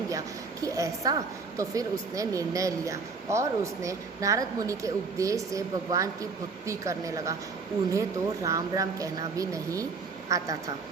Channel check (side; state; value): left; quieter; 4.6 dB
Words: गया कि ऐसा। तो फिर उसने निर्णय लिया और उसने नारद मुनि के उपदेश से भगवान की भक्ति करने लगा। उन्हें तो राम राम कहना भी नहीं आता था।